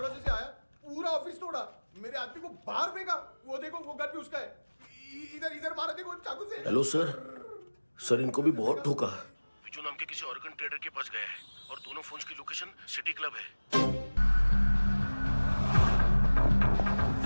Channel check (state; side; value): inverted; both; correlation -1.00